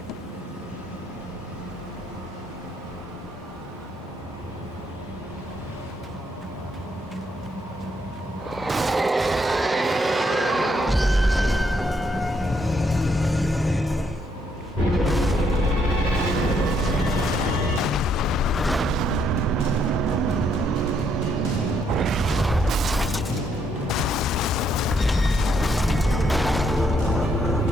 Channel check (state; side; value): normal; both; correlation 0.73